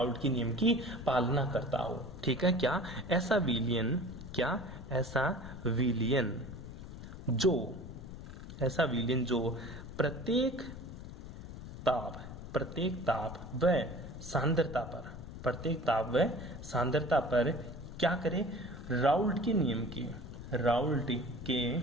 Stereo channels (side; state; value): left; noise; rumble, 11 dB below the sound